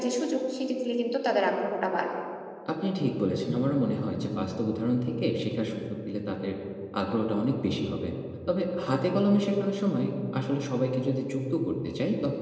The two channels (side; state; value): both; identical; correlation 1.00